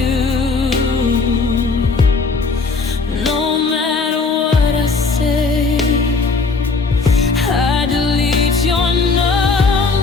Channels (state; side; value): quieter; right; 4.2 dB